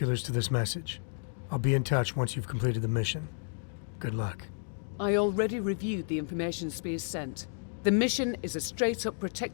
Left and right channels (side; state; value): right; silent; 57 dB below the other